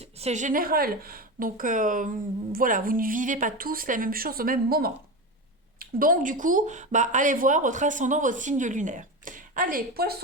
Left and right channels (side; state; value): both; normal; correlation 0.21